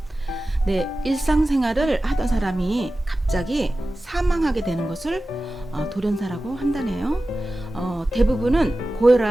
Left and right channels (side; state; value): both; normal; correlation 0.95